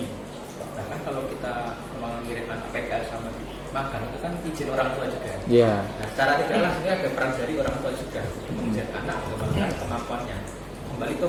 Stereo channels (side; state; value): both; identical; correlation 1.00